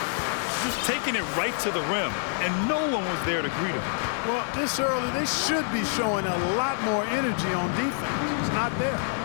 Just taking it right to the rim, and no one was there to greet him. Well, this early, they should be showing a lot more energy on defense. It's not there.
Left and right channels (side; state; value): right; silent; digital silence